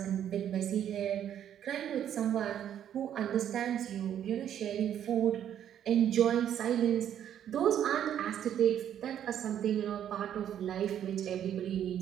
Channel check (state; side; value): quieter; left; 10.0 dB